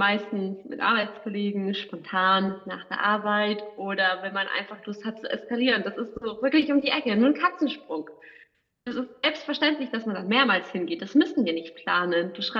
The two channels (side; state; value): both; identical; correlation 1.00